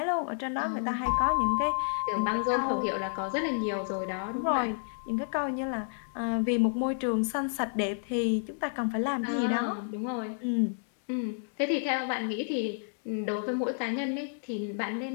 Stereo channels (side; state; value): right; silent; digital silence